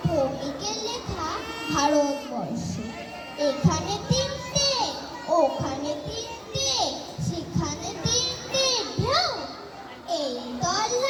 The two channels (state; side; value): identical; both; correlation 1.00